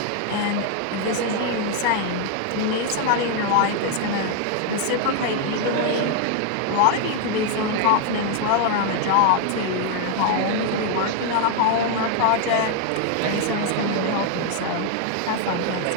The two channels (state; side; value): different; both; correlation 0.00